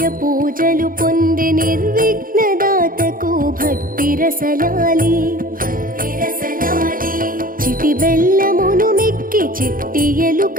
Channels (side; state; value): left; late; 0.41 ms